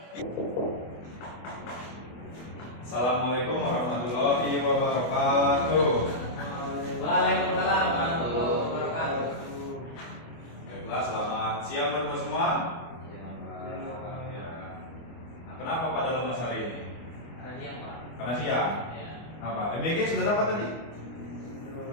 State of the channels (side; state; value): right; late; 24 ms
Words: Assalamualaikum warahmatullahi wabarakatuh. Waalaikumsalam warahmatullahi wabarakatuh. Baiklah, selamat siang teman-teman semua. Ya. Nah, kenapa pada lemas hari ini? Karena siang, Pak. Karena siang. Ya. Apa? MBG sudah dapat tadi?